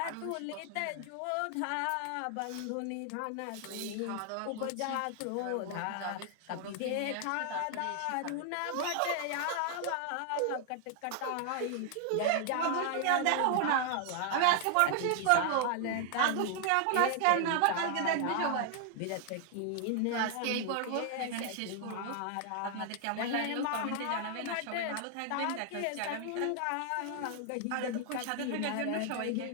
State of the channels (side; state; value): both; different; correlation 0.00